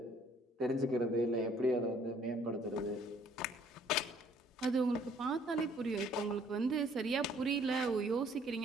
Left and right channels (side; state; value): both; normal; correlation 0.60